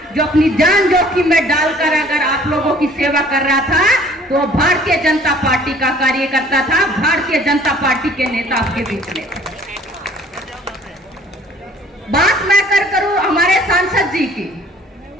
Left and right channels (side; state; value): both; normal; correlation 0.54